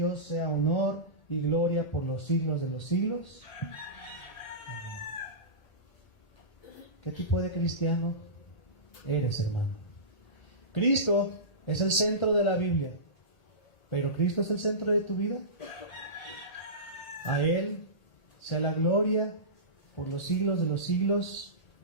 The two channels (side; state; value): right; late; 1.8 ms